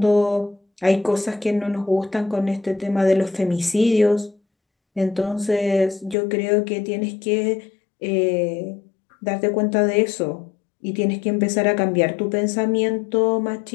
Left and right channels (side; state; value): right; drops out; at 6.2 s